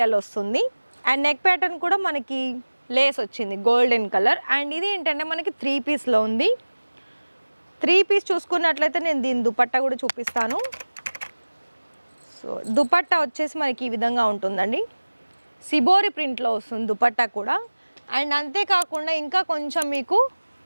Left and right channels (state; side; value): inverted; both; correlation -1.00